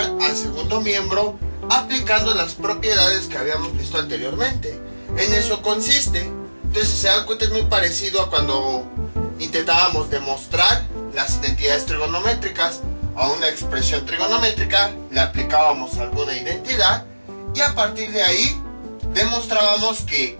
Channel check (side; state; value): both; inverted; correlation -1.00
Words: al segundo miembro aplicando las propiedades que habíamos visto anteriormente. En eso consiste. Entonces, si se dan cuenta, es muy parecido a cuando intentábamos demostrar las identidades trigonométricas. A una expresión trigonométrica le aplicábamos alguna identidad y a partir de ahí demostrábamos que